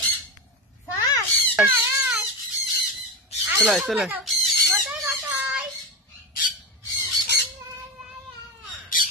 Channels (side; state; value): both; normal; correlation 0.18